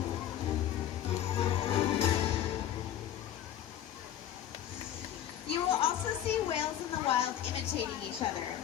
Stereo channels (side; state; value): right; quieter; 11.1 dB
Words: You will also see whales in the wild imitating each other.